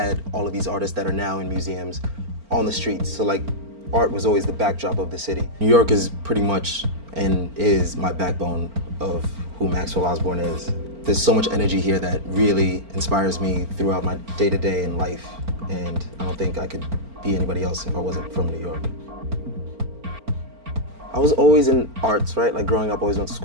all of these artists that are now in museums on the streets. So like, art was always the backdrop of the city. New York is pretty much and is my backbone of who Maxwell Osborne is. There's so much energy here that really inspires me throughout my day-to-day in life, and I don't think I could be anybody else if I wasn't from New York. I was always in arts, right? Like growing up, I always went to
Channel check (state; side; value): late; left; 4.4 ms